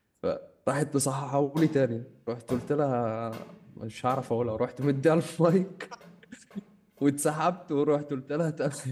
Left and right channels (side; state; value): both; identical; correlation 1.00